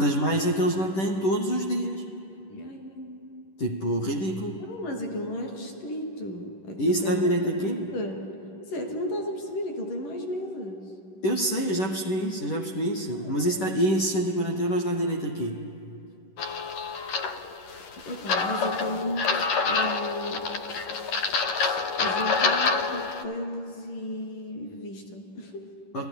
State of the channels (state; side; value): late; right; 11 ms